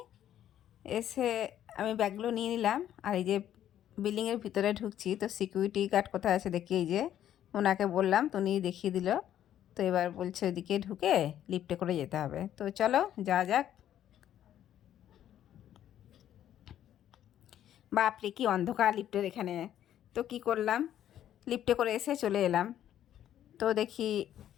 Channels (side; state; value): right; quieter; 11.1 dB